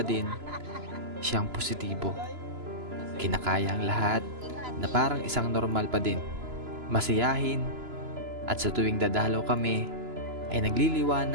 din siyang positibo. Kinakaya ang lahat na parang isang normal pa din. Masiyahin at sa tuwing dadalaw kami ay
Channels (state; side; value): late; left; 2.9 ms